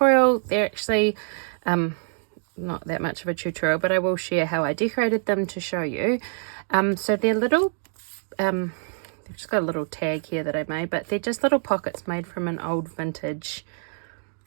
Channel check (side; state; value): left; silent; 56 dB below the other